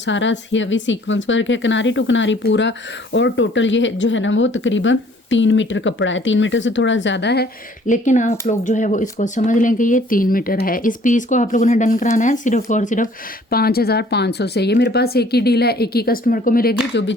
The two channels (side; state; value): both; normal; correlation 0.57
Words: हैवी सीक्वेंस वर्क है, किनारी टू किनारी पूरा। और टोटल ये जो है ना वो तकरीबन 3 मीटर कपड़ा है, 3 मीटर से थोड़ा ज़्यादा है, लेकिन आप लोग जो है वो इसको समझ लें कि ये 3 मीटर है। इस पीस को आप लोगों ने डन कराना है सिर्फ और सिर्फ 5500 से। ये मेरे पास एक ही डील है, एक ही कस्टमर को मिलेगी। जो भी